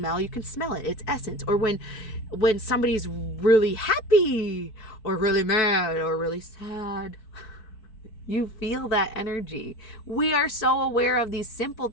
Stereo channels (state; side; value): late; right; 4.6 ms